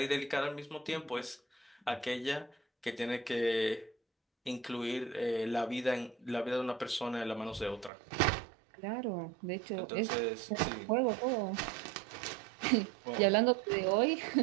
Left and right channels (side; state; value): left; drops out; at 7.9 s